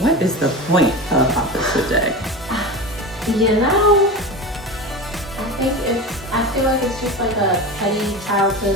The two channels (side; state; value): both; normal; correlation 0.27